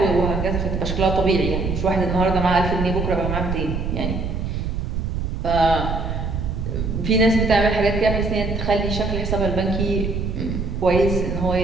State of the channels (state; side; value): noise; right; rumble, 3 dB below the sound